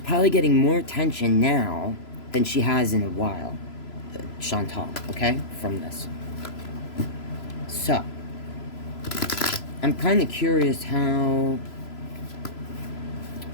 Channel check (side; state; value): right; late; 3.0 ms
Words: probably getting more attention now than she has in a while. Chantal, okay, from this. So, I'm kind of curious how,